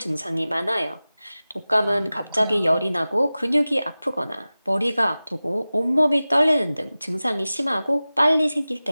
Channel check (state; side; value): inverted; both; correlation -0.97